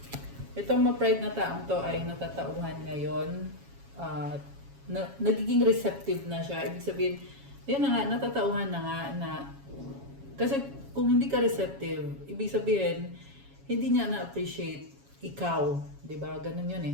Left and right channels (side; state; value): left; late; 7.2 ms